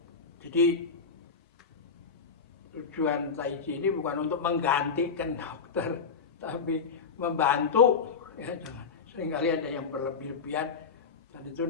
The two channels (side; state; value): right; quieter; 5.4 dB